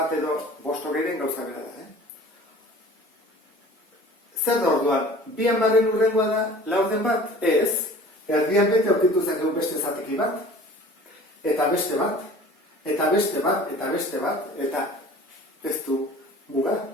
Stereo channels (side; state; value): both; normal; correlation 0.45